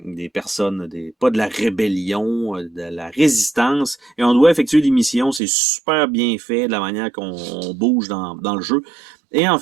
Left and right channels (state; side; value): drops out; left; at 5.4 s